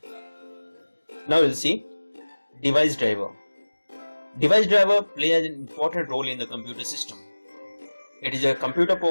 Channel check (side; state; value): both; inverted; correlation -1.00